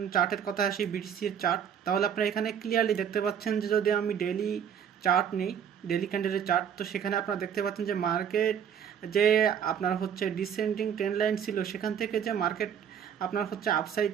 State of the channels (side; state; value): left; quieter; 8.3 dB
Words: কথা আসি, বিটিসির চার্ট, তাহলে আপনারা এখানে ক্লিয়ারলি দেখতে পাচ্ছেন যে যদি আমি ডেইলি চার্ট নেই, ডেইলি ক্যান্ডেলের চার্ট, তো সেখানে আপনারা দেখতে পাচ্ছেন যে মার্কেট যে আপনার হচ্ছে ডিসেন্ডিং ট্রেন্ড লাইন ছিল, সেখান থেকে যে মার্কেট আপনার হচ্ছে আপসাইড